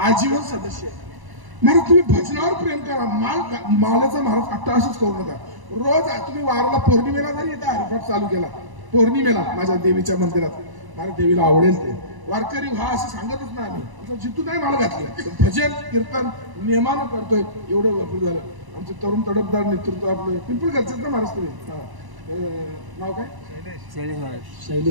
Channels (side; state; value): left; late; 1.0 ms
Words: आजीवन सदस्य आहे. महाराज तुम्ही भजनावर प्रेम करा, मालाचा महाराज अट्टाहासच करू नका. रोज तुम्ही वाराला पौर्णिमेला जरी इथं हरिपाठ चालू केला, पौर्णिमेला माझ्या देवीच्या मंदिरात, मला देवीला आवडेल ते वारकरी व्हा असं सांगतच नाही आम्ही. आमचं जिथून नाही माल घातलं, भजन कीर्तन नियमानं करतोय, एवढं भरपूर झालं. आमचं तरुण तडफदार नेतृत्व आपलं पिंपळगडचं ना महाराज तुम्ही नाव काय?